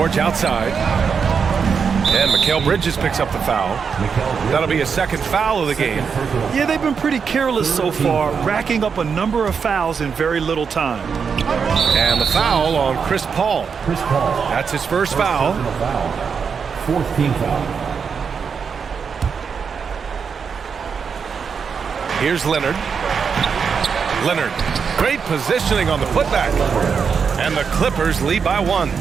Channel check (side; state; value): left; quieter; 6.2 dB